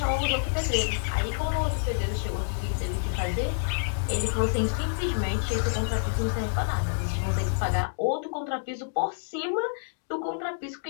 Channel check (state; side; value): silent; right; digital silence